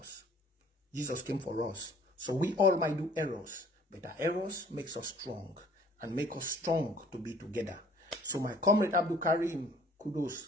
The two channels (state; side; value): normal; both; correlation 0.55